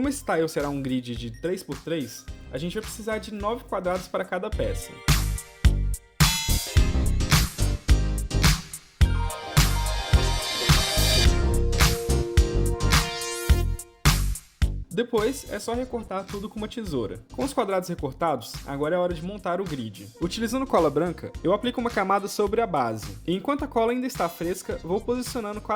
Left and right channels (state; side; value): identical; both; correlation 1.00